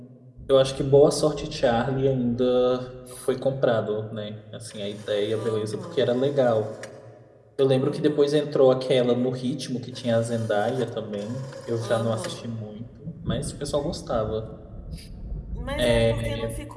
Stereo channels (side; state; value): both; identical; correlation 1.00